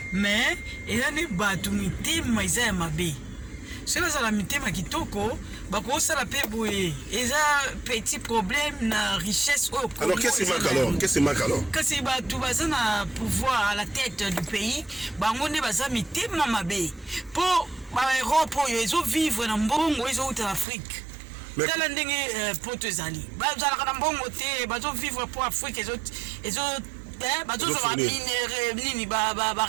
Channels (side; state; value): left; drops out; at 20.7 s